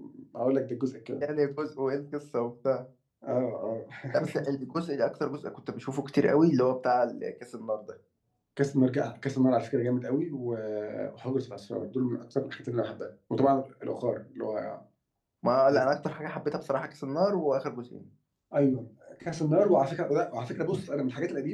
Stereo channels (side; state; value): both; identical; correlation 1.00